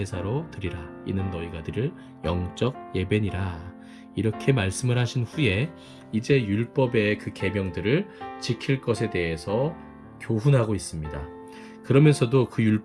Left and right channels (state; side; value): identical; both; correlation 1.00